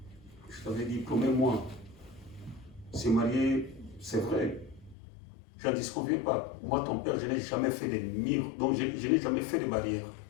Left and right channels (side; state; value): right; drops out; at 5.0 s